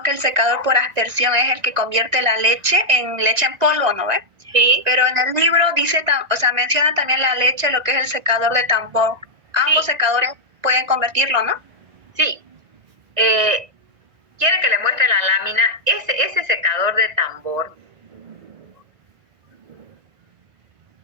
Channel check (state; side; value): late; left; 1.9 ms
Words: que el secador por aspersión es el que convierte la leche en polvo, ¿no ve? Sí. Pero en el libro dice, menciona también la leche, lo que es el secador de tambor. Ambos secadores pueden convertirlo, ¿no? Sí. ¿Quiere que le muestre la lámina? Ese secador de tambor,